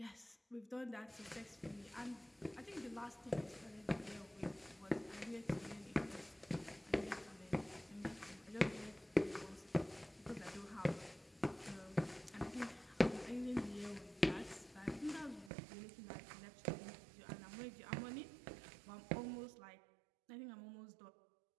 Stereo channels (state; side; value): drops out; left; at 15.5 s